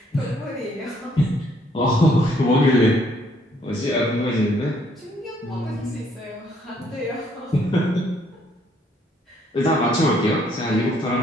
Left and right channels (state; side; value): normal; both; correlation 0.67